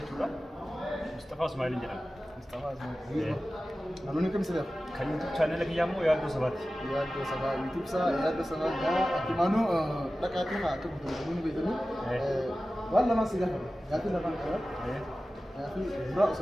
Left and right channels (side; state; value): both; normal; correlation 0.95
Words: مصطفى اسماعيل جرام مصطفى اسماعيل نانوني كم سبب كان يوتيوب channel لك يامو يا دو سبات يوتيوب سا يا دو سبب يا أكيمانو لكاتي ها كم نانوني بيتني والله ما سيجا قاتي لبان كذا قاتي برا